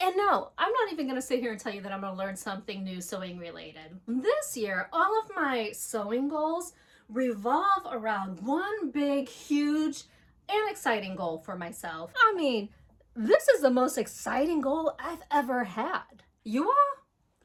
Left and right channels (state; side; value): identical; both; correlation 1.00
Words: no, I'm not even gonna sit here and tell you that I'm gonna learn something new sewing related. This year, all of my sewing goals revolve around one big, huge, and exciting goal for myself. I mean, this is the most exciting goal I've ever had. You all?